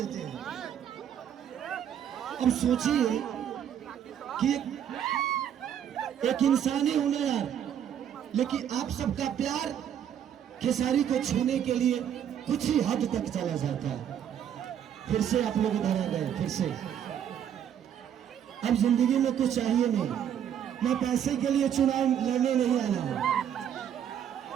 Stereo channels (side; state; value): left; quieter; 9.4 dB